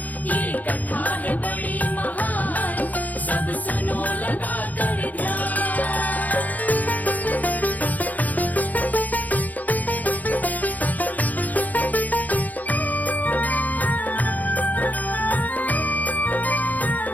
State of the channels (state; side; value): late; right; 0.079 ms